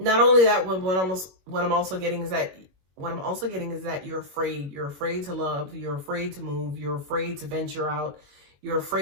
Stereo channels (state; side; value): late; left; 21 ms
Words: only that, what I'm also getting is that you're afraid. You're afraid to love, you're afraid to move, you're afraid to venture out, you're